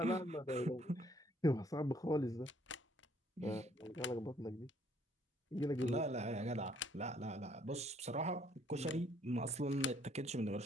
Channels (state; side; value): normal; both; correlation 0.65